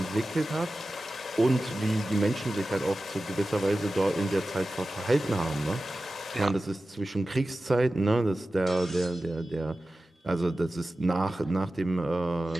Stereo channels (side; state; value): both; normal; correlation 0.95